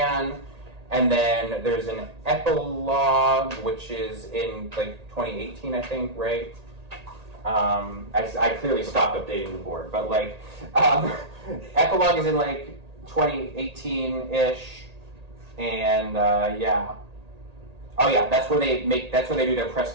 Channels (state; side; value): late; left; 1.8 ms